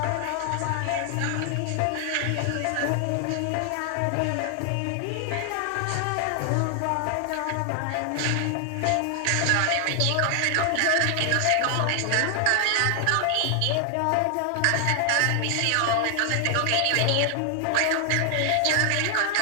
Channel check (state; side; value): different; both; correlation 0.00